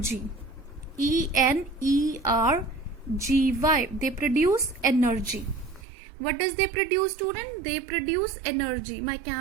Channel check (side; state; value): left; drops out; at 5.9 s